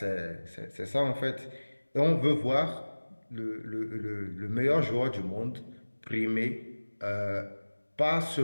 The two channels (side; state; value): both; inverted; correlation -1.00